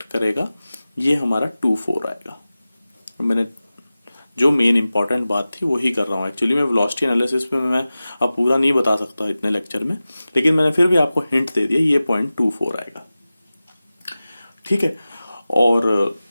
करेगा ये हमारा 2 4 आएगा। मैंने जो मेन इंपॉर्टेंट बात थी वही कर रहा हूँ। एक्चुअली मैं वेलोसिटी एनालिसिस में मैं अब पूरा नहीं बता सकता इतने लेक्चर में, लेकिन मैंने फिर भी आपको हिंट दे दिया, ये पॉइंट 2 4 आएगा, ठीक है। और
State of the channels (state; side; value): inverted; both; correlation -0.96